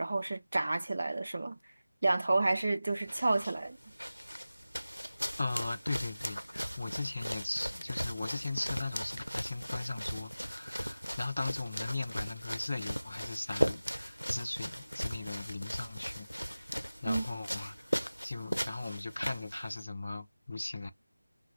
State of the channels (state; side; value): inverted; both; correlation -0.96